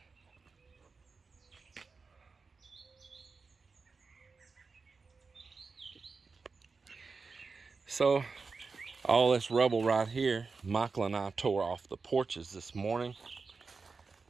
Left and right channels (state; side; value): quieter; left; 4.5 dB